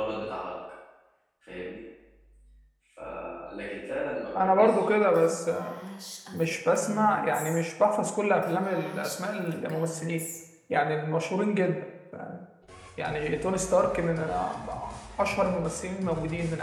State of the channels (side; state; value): both; identical; correlation 1.00